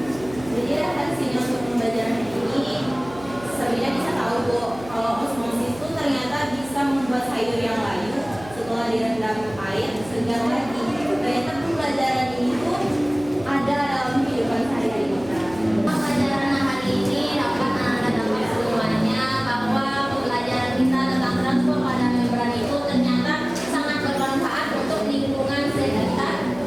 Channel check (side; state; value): right; noise; hum, 18 dB below the sound